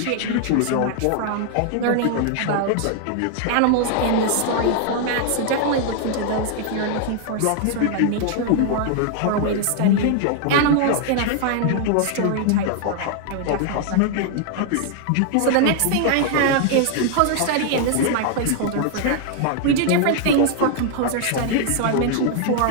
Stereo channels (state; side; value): different; both; correlation 0.00